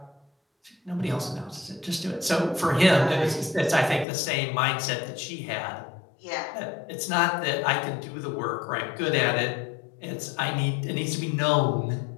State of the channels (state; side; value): drops out; right; at 4.0 s